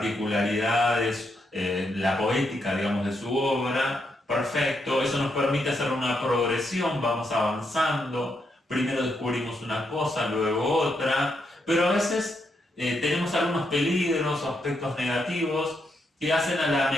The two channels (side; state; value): both; normal; correlation 0.80